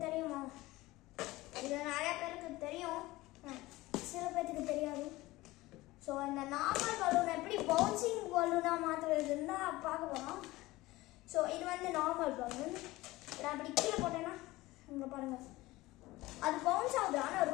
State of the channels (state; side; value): quieter; right; 19.2 dB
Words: தெரியுமா? இது நிறைய பேருக்கு தெரியும், சில பேருக்கு தெரியாது. ஸோ இந்த நார்மல் பலூனை எப்படி பவுன்சிங் பலூனாக மாற்றுறதுன்னு தான் பார்க்க போகிறோம். ஸோ இது வந்து நார்மல் பலூன். நான் அப்படி கீழே போட்டேன்னா இங்கே பாருங்கள், அது பவுன்ஸ் ஆகுது, ஆனால்